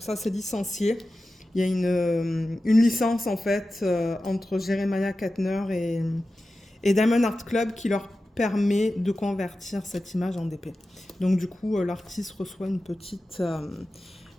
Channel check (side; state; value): both; normal; correlation 0.94